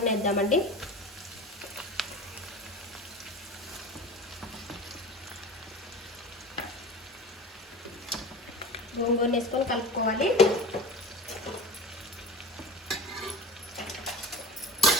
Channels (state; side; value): normal; both; correlation 0.34